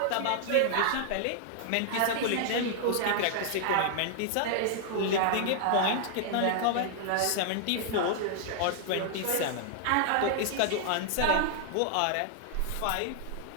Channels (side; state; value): both; different; correlation 0.00